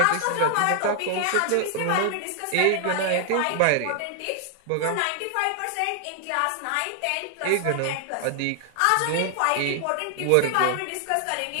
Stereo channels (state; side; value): different; both; correlation 0.00